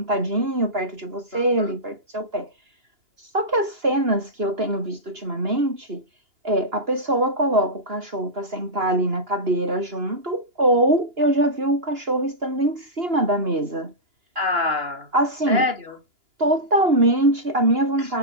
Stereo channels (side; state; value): left; late; 2.9 ms